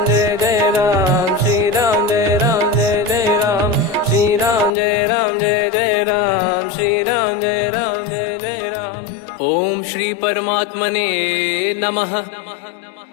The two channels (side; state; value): right; drops out; at 4.7 s